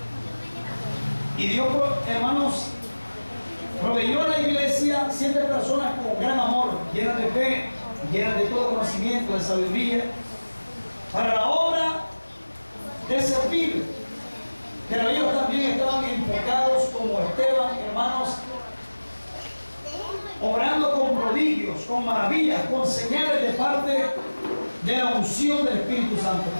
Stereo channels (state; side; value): inverted; both; correlation -1.00